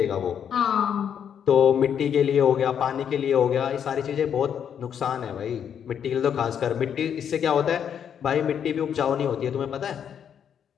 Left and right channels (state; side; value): quieter; right; 8.4 dB